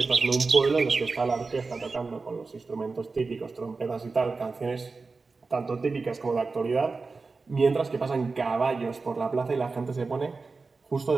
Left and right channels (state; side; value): quieter; left; 4.1 dB